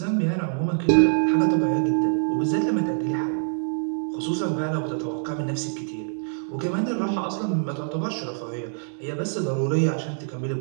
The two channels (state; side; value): silent; left; digital silence